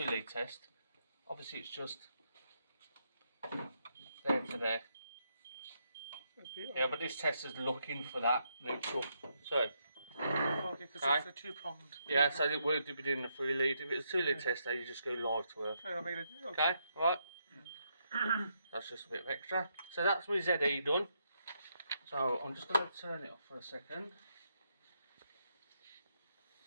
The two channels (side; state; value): both; inverted; correlation -0.79